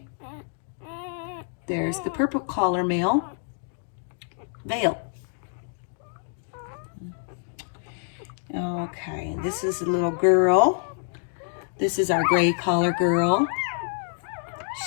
There's the purple collar male. Vale. Okay, this is a little girl. This is our gray collar girl.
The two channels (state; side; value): silent; right; 60 dB below the other